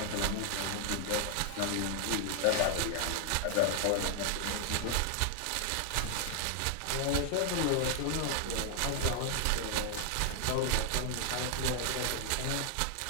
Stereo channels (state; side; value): different; both; correlation 0.00